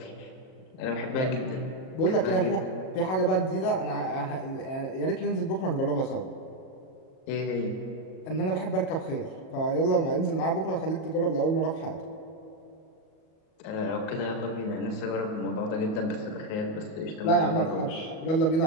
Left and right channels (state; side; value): late; right; 37 ms